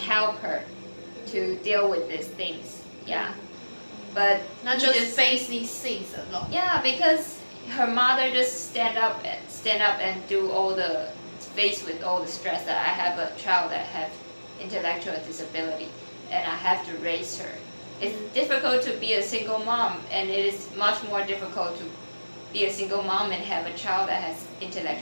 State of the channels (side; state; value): both; inverted; correlation -1.00